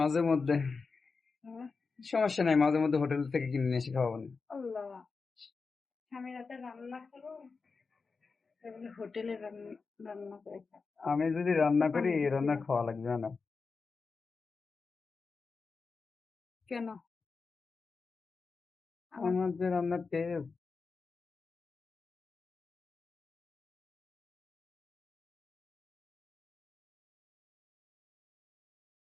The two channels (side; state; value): right; quieter; 4.6 dB